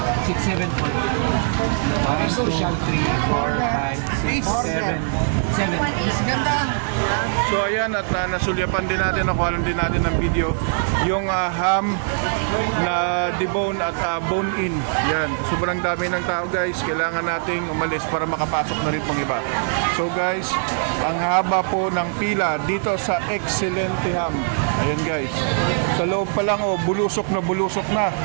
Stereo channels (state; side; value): silent; left; 64 dB below the other